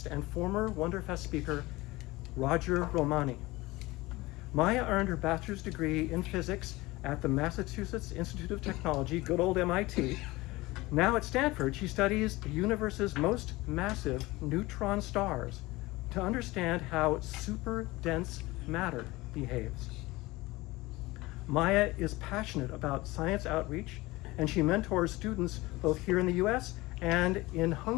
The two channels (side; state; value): right; quieter; 20.7 dB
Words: and former Wonderfest speaker Roger Romani. Maya earned her bachelor's degree in physics at the Massachusetts Institute of Technology, good old MIT. Now at Stanford, she studies the universe's most massive neutron stars to understand how super dense matter behaves. Maya is passionate about science outreach, and she mentors students both here in the US and in